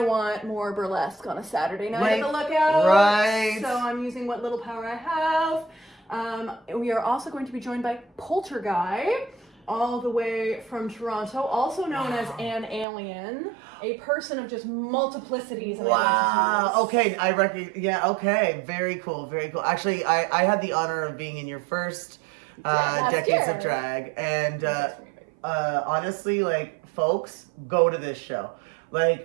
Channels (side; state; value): left; drops out; at 12.9 s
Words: want more burlesque on a Saturday night at the Lookout. Right. So I'm using what little power I have. We are also going to be joined by Polterguy, all the way from Toronto, also known as an alien, a person of just multiplicities. Wow. Okay, I reckon. Yeah. Okay. Very cool. Very cool. Actually, I had the honor of being in your first Decades of Drag, and honestly, like, folks, go to this show.